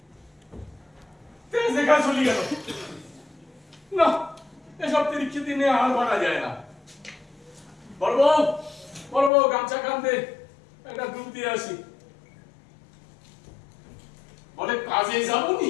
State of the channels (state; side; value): drops out; right; at 9.3 s